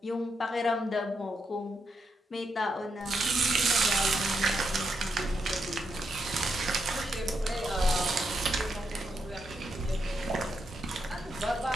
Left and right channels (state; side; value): normal; both; correlation 0.82